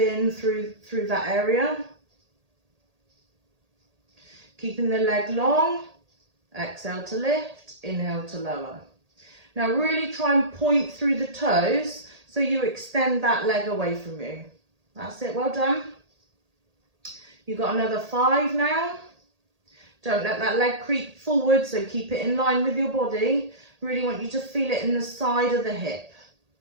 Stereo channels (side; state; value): left; late; 1.8 ms